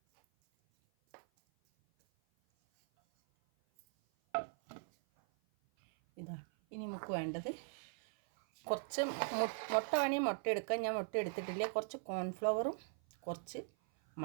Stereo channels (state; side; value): silent; left; 51 dB below the other